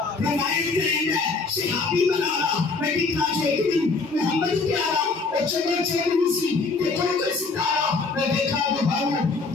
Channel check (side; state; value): right; quieter; 4.0 dB